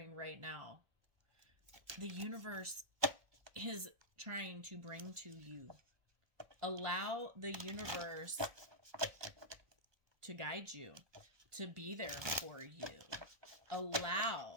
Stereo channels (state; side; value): late; left; 1.2 ms